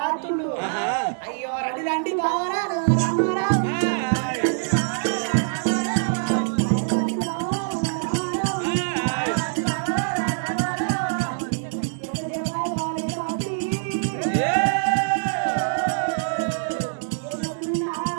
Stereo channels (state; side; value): silent; left; digital silence